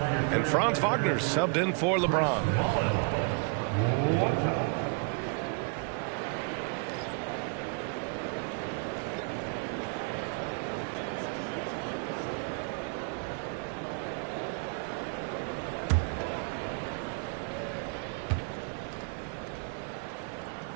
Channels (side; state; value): left; quieter; 39.4 dB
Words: And Franz Wagner's subbed in for LeBron.